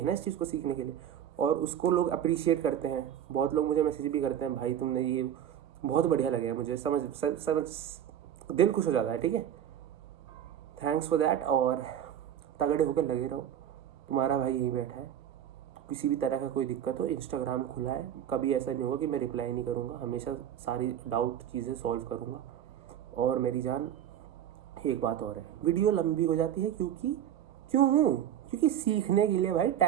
ना इस चीज़ को सीखने के लिए, और उसको लोग अप्रिशिएट करते हैं। बहुत लोग मुझे मैसेज भी करते हैं, भाई तुमने ये बहुत बढ़िया लगे, मुझे समझ दिल खुश हो जाता है, ठीक है। थैंक्स फॉर दैट, और तगड़े होकर लगे रहो। तुम्हारा भाई यहीं बैठा है, किसी भी तरह का कोई दिक्कत हो, इंस्टाग्राम खुला है, कभी ऐसा नहीं होगा कि मैं रिप्लाई नहीं करूँगा, हमेशा सारी डाउट चीज़ें सॉल्व करूँगा। और मेरी जान एक बात और है, वीडियो लंबी हो जाती है क्योंकि सीखने के लिए भाई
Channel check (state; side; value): quieter; left; 10.2 dB